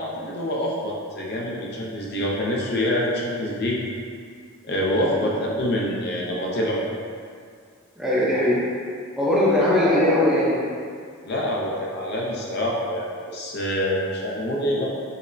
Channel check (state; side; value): normal; both; correlation 0.31